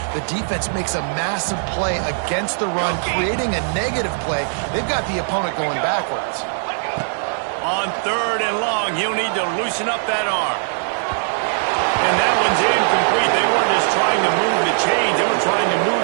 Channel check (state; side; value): silent; left; 66 dB below the other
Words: the defense makes a massive play against the run, creating a negative play. They've got the opponent going backwards. On 3rd and long, he'll need to loosen up that arm. And that one's incomplete. They weren't just trying to move the chains. They were trying to move